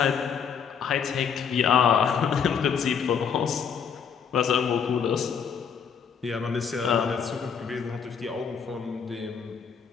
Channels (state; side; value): quieter; right; 7.0 dB